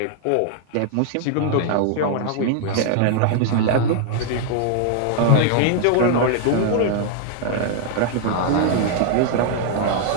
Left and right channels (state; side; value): different; both; correlation 0.00